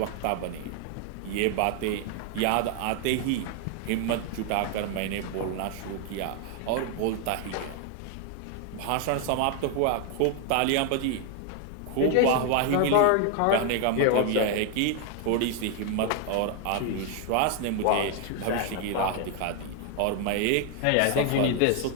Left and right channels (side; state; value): both; different; correlation 0.00